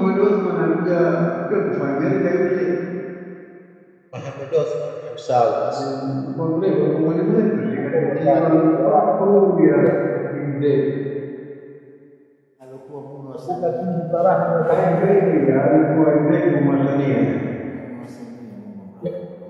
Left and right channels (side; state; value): both; identical; correlation 1.00